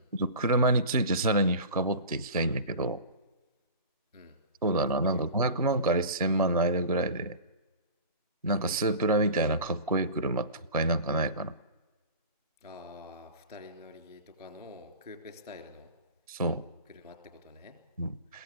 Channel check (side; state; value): both; inverted; correlation -0.36